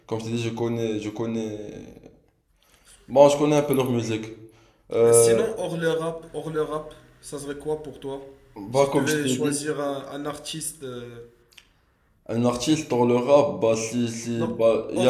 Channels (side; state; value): both; identical; correlation 1.00